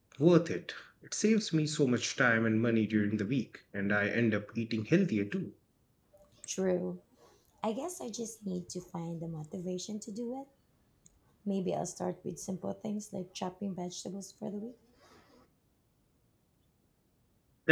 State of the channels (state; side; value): identical; both; correlation 1.00